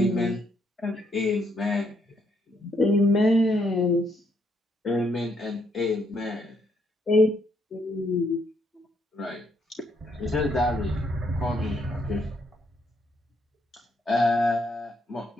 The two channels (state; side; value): normal; both; correlation 0.73